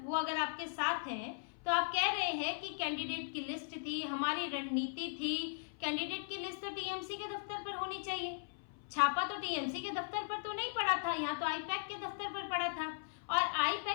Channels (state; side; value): silent; right; 52 dB below the other